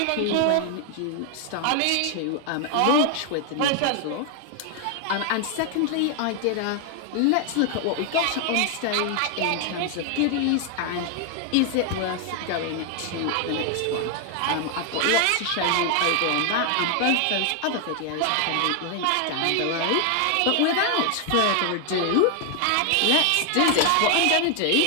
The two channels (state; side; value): different; both; correlation 0.00